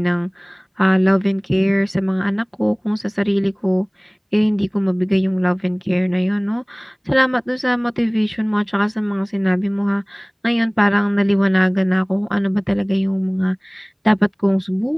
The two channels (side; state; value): both; identical; correlation 1.00